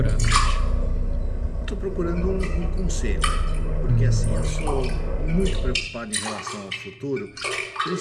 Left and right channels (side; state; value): both; identical; correlation 1.00